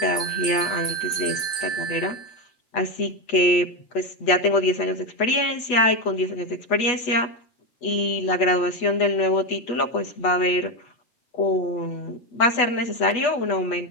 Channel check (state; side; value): late; right; 8.2 ms